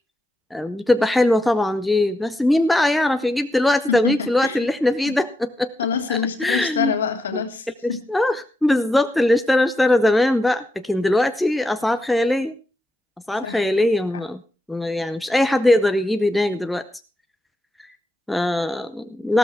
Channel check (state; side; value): normal; both; correlation 0.84